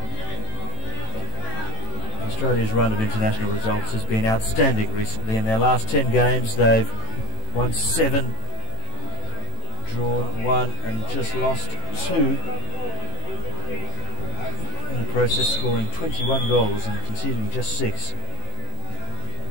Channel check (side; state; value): right; late; 18 ms